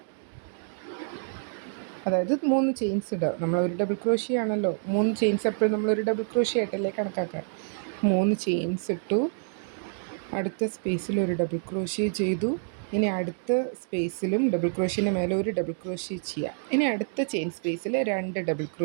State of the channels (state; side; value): silent; left; digital silence